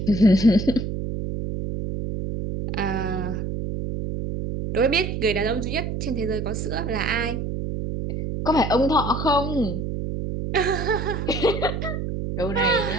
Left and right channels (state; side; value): noise; right; hum, 4 dB below the sound